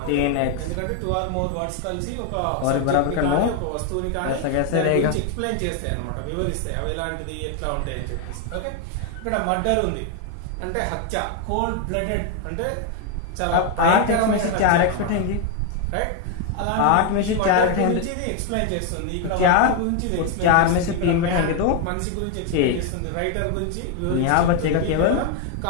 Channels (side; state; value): both; different; correlation 0.01